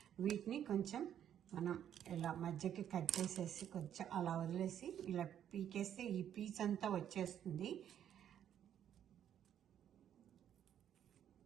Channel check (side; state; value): left; quieter; 9.9 dB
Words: వీటిని కొంచెం మనం ఇలా మధ్యకి కట్ చేసేసి కొంచెం అలా వదిలేసి ఇలా పీకేస్తే ఈ పీచ్ అంతా వచ్చేస్తుంది.